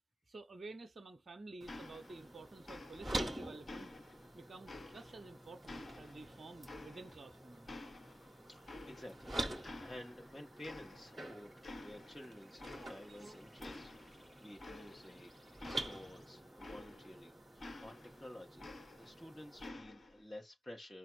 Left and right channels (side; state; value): both; normal; correlation 0.93